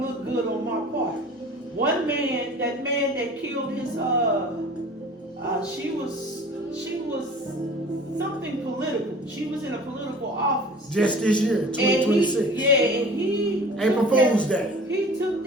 look good on my part. One man, that man that killed his, she was something political. She was in a political office. Just this year, 2026. And he April Fool's Day. He took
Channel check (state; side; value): normal; both; correlation 0.44